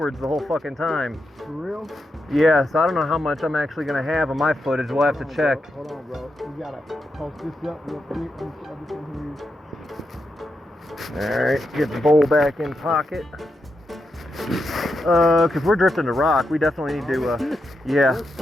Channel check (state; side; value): normal; both; correlation 0.85